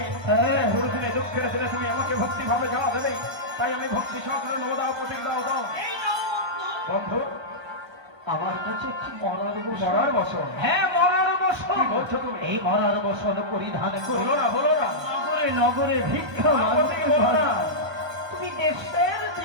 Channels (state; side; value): late; left; 1.3 ms